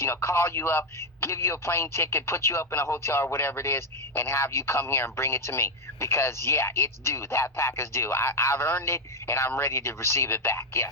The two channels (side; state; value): both; normal; correlation 0.05